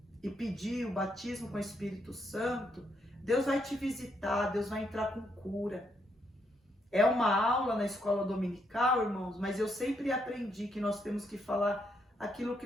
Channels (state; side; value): normal; both; correlation 0.76